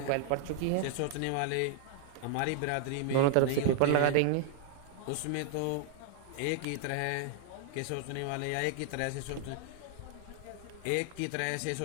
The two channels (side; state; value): both; different; correlation 0.00